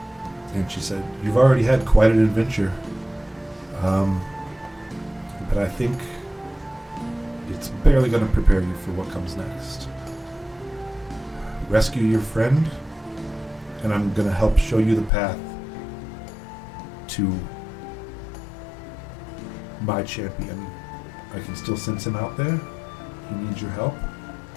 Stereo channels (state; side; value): drops out; right; at 15.1 s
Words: And she said, you've already had quite an adventure. But I think it's barely going to prepare you for what comes next. Rescue your friend, and I'm going to help show you the path to my champion. I can still sense him out there. He needs your help.